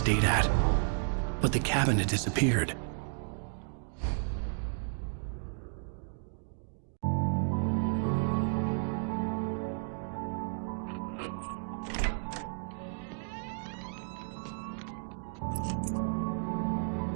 at. But the cabin had disappeared.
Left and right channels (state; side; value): silent; left; digital silence